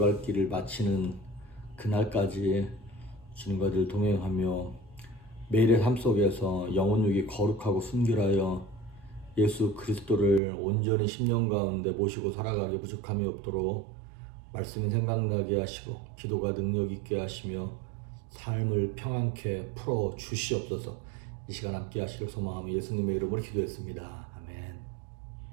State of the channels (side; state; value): left; drops out; at 10.4 s